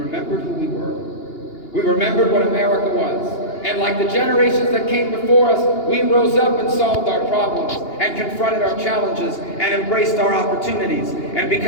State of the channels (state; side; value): late; right; 2.8 ms